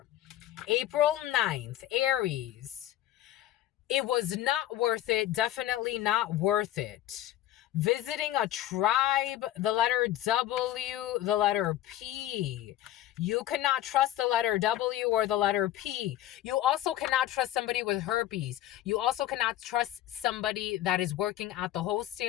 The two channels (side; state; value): right; quieter; 13.6 dB